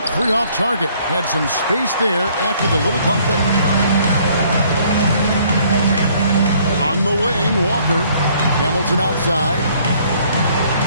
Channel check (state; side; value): inverted; both; correlation -0.61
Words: three off target. Had some space there after the little pump fake. On the wing, Walker. Hamilton outside.